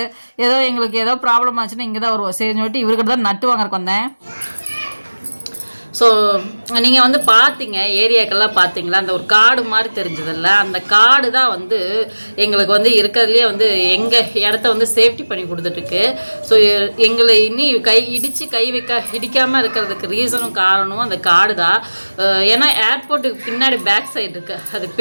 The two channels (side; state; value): both; inverted; correlation -1.00